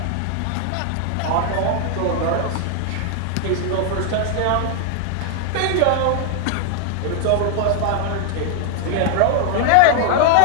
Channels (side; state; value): both; different; correlation 0.00